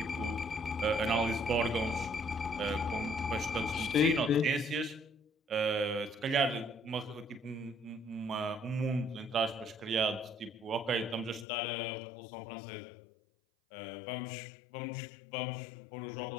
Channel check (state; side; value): drops out; right; at 11.5 s